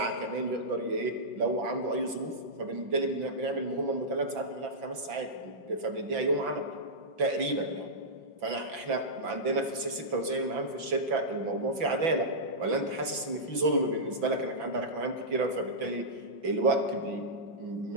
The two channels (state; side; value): late; left; 6.0 ms